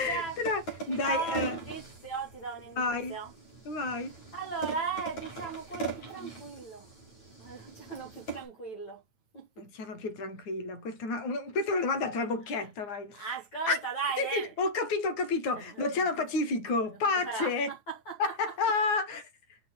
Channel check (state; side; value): late; right; 9.1 ms